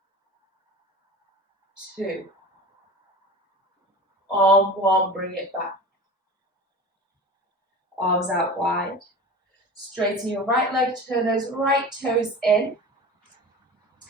2, arm 1, bring it back. Arms out wide. Straighten your right leg, turn those right toes in.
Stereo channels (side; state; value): both; normal; correlation 0.34